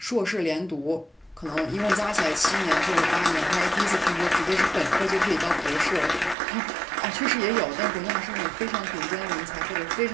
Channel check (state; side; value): drops out; left; at 6.4 s